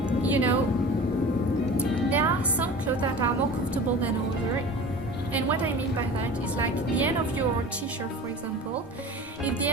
you know, there are some clothes that are more comfortable than others. And what I mean by that is, like, the end of your t-shirt, for example. If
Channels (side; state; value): both; normal; correlation 0.37